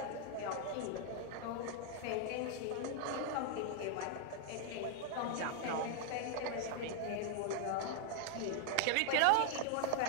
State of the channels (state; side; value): different; both; correlation 0.00